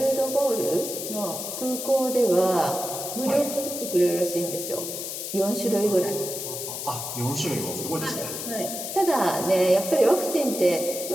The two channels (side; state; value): left; noise; hiss, 6 dB below the sound